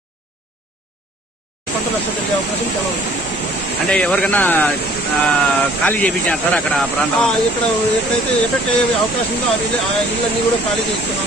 అంటే ఎవరికైనా ఖాళీ చేయించారు సార్ అక్కడ ప్రాంతం? ఇక్కడ ఎక్కడైతే ఎఫెక్ట్ అయ్యే అవకాశం ఉందో ఆ ఇళ్ళన్నీ కూడా ఖాళీ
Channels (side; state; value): both; normal; correlation 0.55